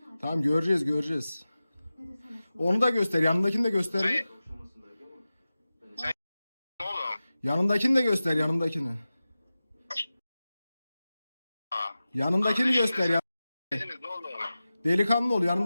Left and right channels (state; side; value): inverted; both; correlation -0.95